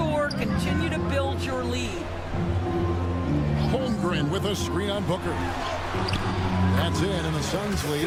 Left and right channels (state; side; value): identical; both; correlation 1.00